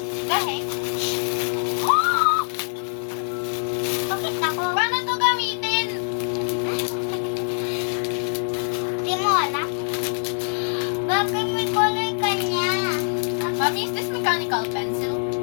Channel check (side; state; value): right; silent; 63 dB below the other